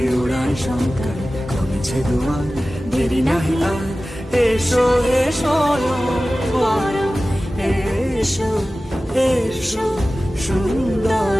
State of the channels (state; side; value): normal; both; correlation 0.96